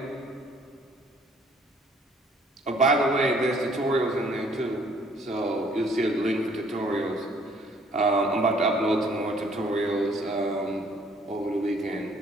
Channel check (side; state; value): both; normal; correlation 0.60